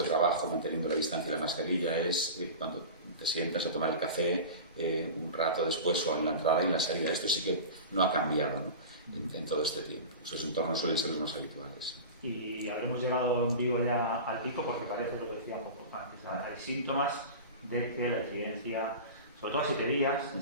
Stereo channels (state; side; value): inverted; both; correlation -0.31